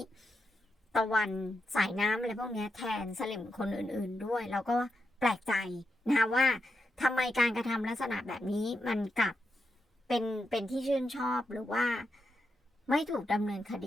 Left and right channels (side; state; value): both; normal; correlation 0.86